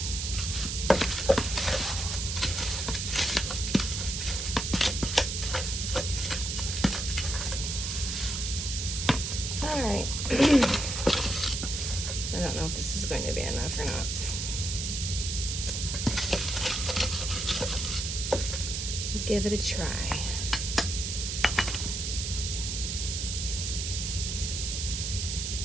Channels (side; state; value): right; noise; hiss, 3 dB below the sound